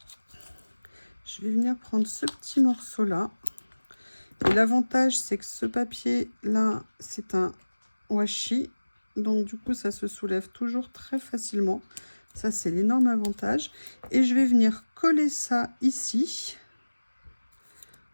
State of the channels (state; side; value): inverted; both; correlation -1.00